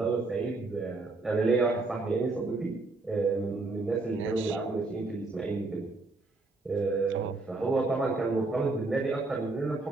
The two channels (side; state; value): left; quieter; 3.4 dB